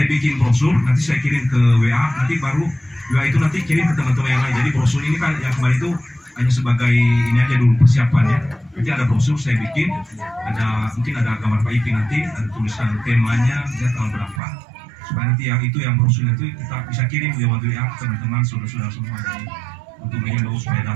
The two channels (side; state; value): left; drops out; at 14.4 s